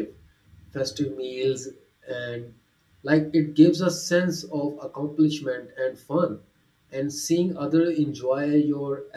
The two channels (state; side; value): identical; both; correlation 1.00